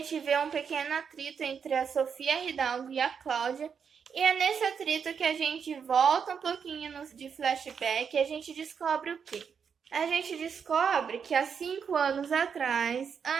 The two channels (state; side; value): quieter; left; 6.7 dB